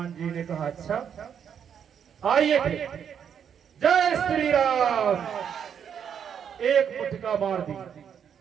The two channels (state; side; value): quieter; left; 8.0 dB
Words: जी ने कहा, अच्छा आइए फिर। जय श्री राम। एक मुठका मार दी।